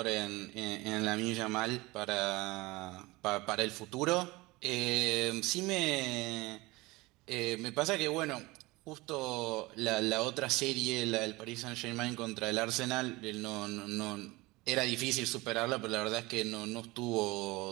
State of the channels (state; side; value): quieter; left; 22.0 dB